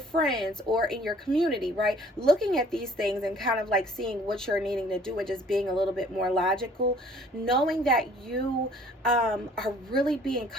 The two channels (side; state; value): both; normal; correlation 0.55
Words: friends or in your community, right? Looking at these things and kind of like seeing what you're needing to do and just being a little bit more logical, knowing that you are really being